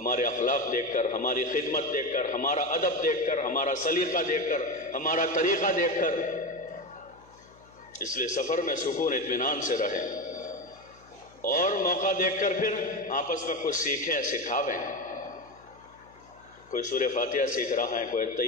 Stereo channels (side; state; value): left; noise; hum, 27 dB below the sound